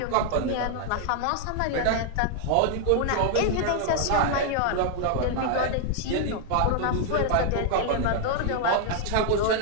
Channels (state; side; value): different; both; correlation 0.00